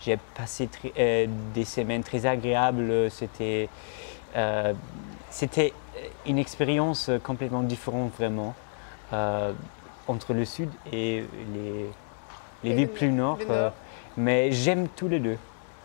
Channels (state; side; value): silent; right; digital silence